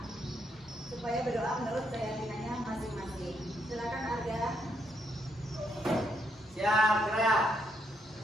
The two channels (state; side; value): normal; both; correlation 0.75